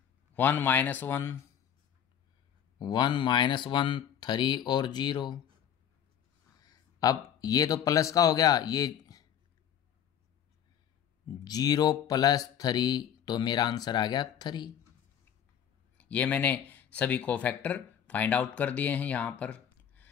1 -1 1 -1 3 और 0। अब ये तो प्लस का हो गया, ये 0 + 3, तो मेरा आंसर आ गया 3। ये मैंने सभी को फैक्टर फाइंड आउट कर दिए हैं। यहाँ पर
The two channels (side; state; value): right; quieter; 9.2 dB